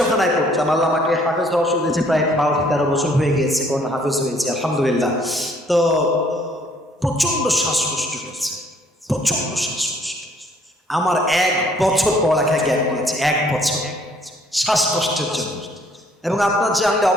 পড়তাম, আল্লাহ আমাকে হাফেজ হওয়ার সুযোগ দিয়েছে, প্রায় 12-13 বছর হয়ে গিয়েছে, কোন হাফেজ হয়েছে আলহামদুলিল্লাহ। তো প্রচন্ড শ্বাসকষ্ট হয়েছে, প্রচন্ড শ্বাসকষ্ট। আমার 1 বছর পড়ালেখায় গ্যাপ নিয়েছে, 1 বছর শ্বাসকষ্টের জন্য। এবং আপনার জানলে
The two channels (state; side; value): normal; both; correlation 0.62